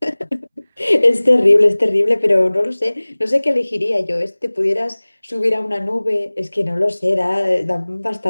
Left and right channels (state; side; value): inverted; both; correlation -1.00